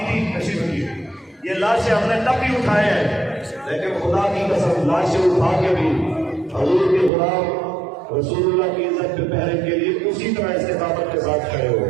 تھی تشریف کی یہ لاشیں ہم نے تب بھی اٹھائے ہیں لیکن خدا کی قسم لاشیں اٹھا کے بھی حضور کے غلام رسول اللہ کی عزت پہ پہرے کے لیے اسی طرح استقامت کے ساتھ کھڑے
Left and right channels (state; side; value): drops out; left; at 7.1 s